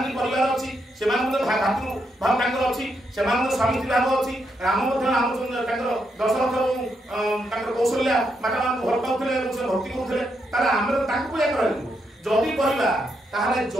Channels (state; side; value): normal; both; correlation 0.80